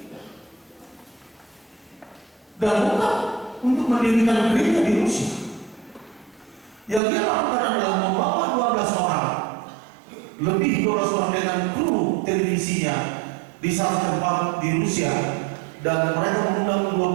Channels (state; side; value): drops out; left; at 7.0 s